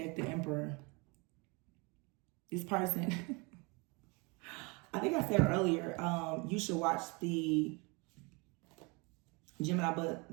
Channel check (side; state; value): left; quieter; 29.0 dB